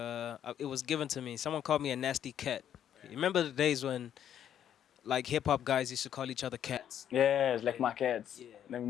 was given to me. Someone called me a nasty cat. You remember the days when like hip hop guys used to call each other cats? Yes, like my cats. Yeah. Then we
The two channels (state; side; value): quieter; right; 9.9 dB